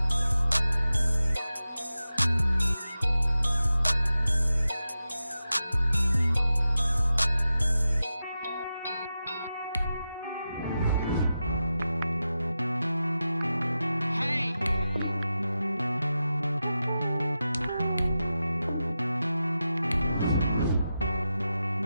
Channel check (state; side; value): inverted; both; correlation -0.92